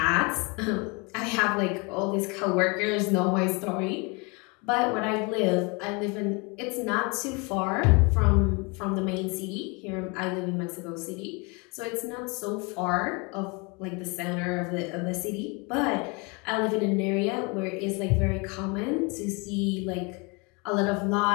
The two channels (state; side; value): quieter; right; 29.9 dB